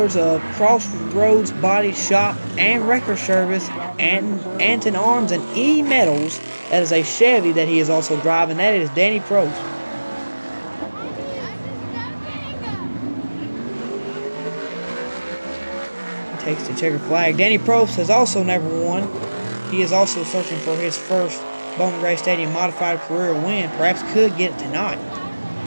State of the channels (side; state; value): both; inverted; correlation -1.00